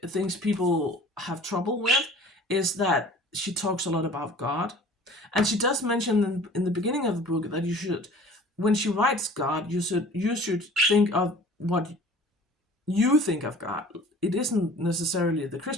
things people have trouble with is that she talks a lot about God. And she does mention in the beginning of the book that you should, when she writes God, you should think of what you think of God. It isn't necessarily the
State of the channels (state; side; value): normal; both; correlation 0.47